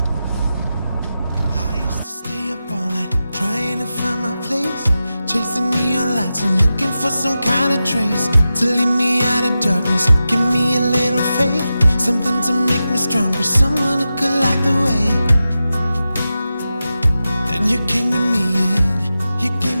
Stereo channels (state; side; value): inverted; both; correlation -0.92